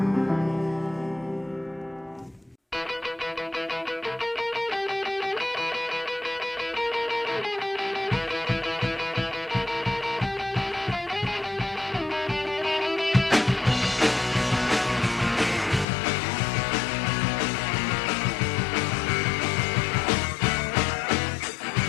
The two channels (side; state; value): right; drops out; at 15.9 s